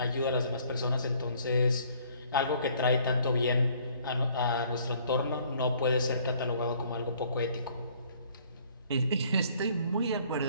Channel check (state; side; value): inverted; both; correlation -0.59